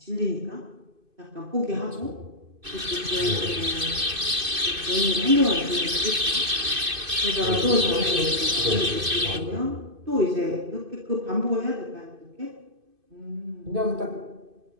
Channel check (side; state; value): left; late; 2.5 ms